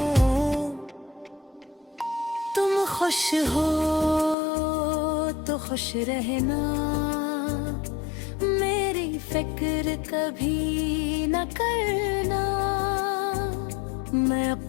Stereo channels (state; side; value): drops out; right; at 4.4 s